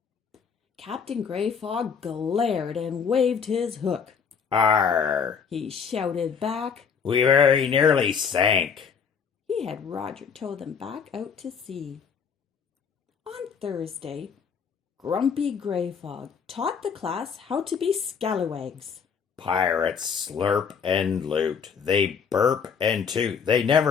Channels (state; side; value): quieter; right; 6.5 dB